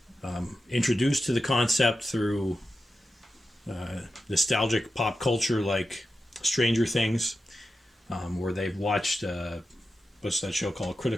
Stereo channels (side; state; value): both; normal; correlation 0.91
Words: introduced to the concept through nostalgic pop culture like Stranger Things, where they've watched, what's that show called?